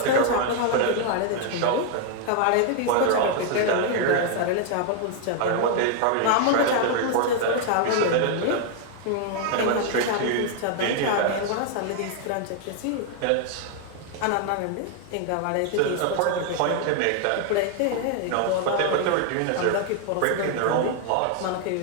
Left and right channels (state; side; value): different; both; correlation 0.00